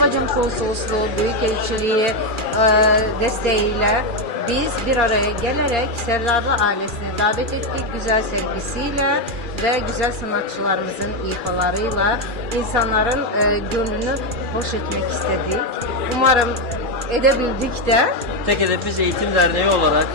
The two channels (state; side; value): late; left; 2.4 ms